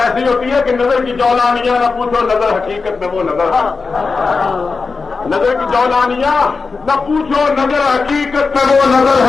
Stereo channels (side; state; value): right; quieter; 4.5 dB